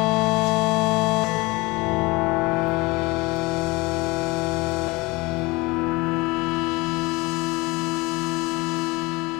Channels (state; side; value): quieter; right; 23.7 dB